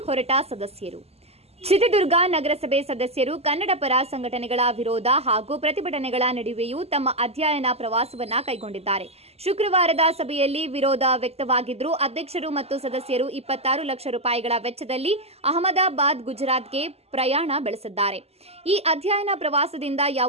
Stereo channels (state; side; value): late; left; 0.29 ms